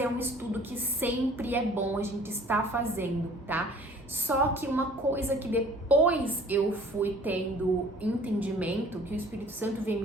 é um estudo que sempre é bom a gente estar fazendo, tá? Só que uma coisa que depois eu fui tendo entendimento, que o Espírito Santo vem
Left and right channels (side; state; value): both; normal; correlation 0.51